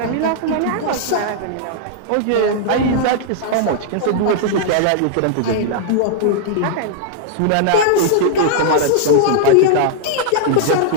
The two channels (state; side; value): different; both; correlation -0.01